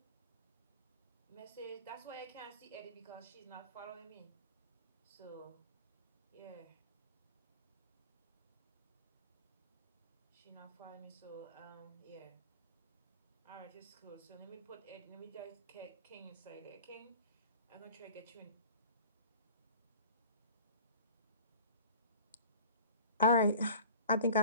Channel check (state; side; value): inverted; both; correlation -0.43